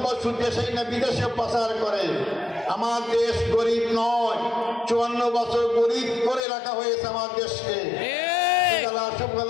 দেশেই না বিদেশে পাচার করে। আমার দেশ গরিব নয়, 54 বছর গরিব করে রাখা হয়েছে আমার দেশকে।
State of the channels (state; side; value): drops out; right; at 6.4 s